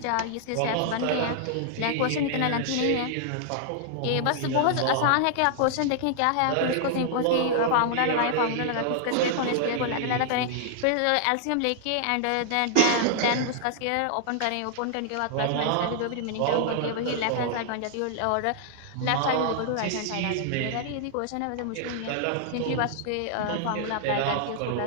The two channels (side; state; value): both; different; correlation -0.01